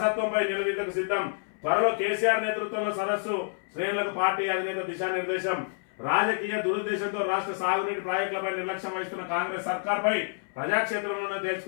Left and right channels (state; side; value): silent; right; 59 dB below the other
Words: నిలదీతకు సిద్ధం, త్వరలో కేసీఆర్ నేతృత్వంలో సదస్సు, శ్రేణులకు పార్టీ అధినేత దిశానిర్దేశం, రాజకీయ దురుద్దేశంతో రాష్ట్ర సాగునీటి ప్రాజెక్టులపై నిర్లక్ష్యం వహిస్తున్న కాంగ్రెస్ సర్కార్పై ప్రజాక్షేత్రంలోనే